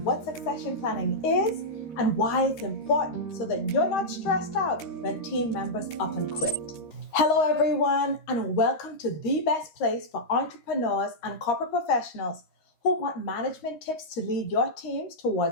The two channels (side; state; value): right; late; 13 ms